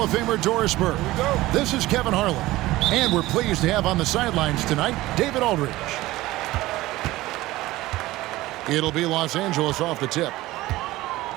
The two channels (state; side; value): quieter; left; 17.8 dB